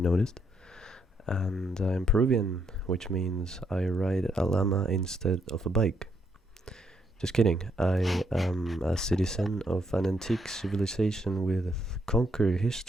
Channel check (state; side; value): normal; both; correlation 0.75